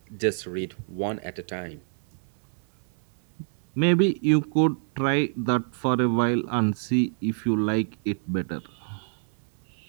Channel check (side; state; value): left; silent; 60 dB below the other